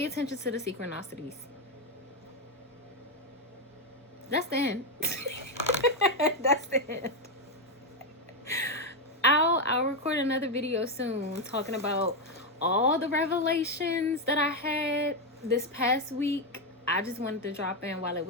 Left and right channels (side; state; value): both; normal; correlation 0.06